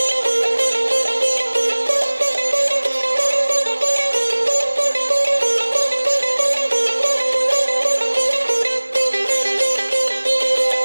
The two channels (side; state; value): both; inverted; correlation -1.00